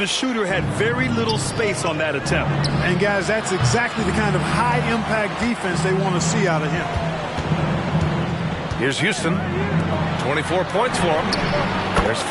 the shooter had very little space on that attempt. And guys, that's exactly the kind of high-impact defense they want to see out of him. Here's Houston. 24 points for him. There's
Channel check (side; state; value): both; identical; correlation 1.00